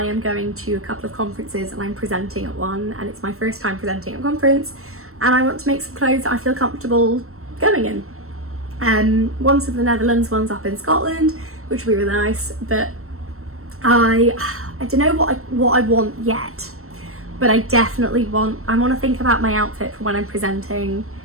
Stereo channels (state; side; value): late; left; 0.63 ms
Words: am going to a couple of conferences and I'm presenting at one, and it's my first time presenting at a conference, and I want to make some clothes that I feel comfortable going in. One's in the Netherlands, one's up in Scotland, which will be really nice, but I don't know what I want yet, but I definitely want to think about my outfit for when I'm presenting,